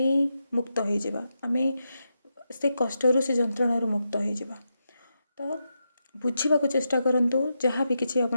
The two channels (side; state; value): both; inverted; correlation -0.86